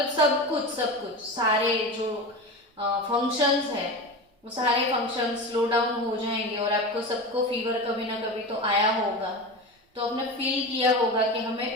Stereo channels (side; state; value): both; normal; correlation 0.26